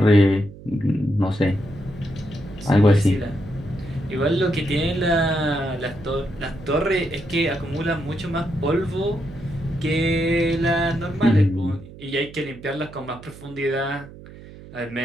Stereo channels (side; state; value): right; noise; hum, 17 dB below the sound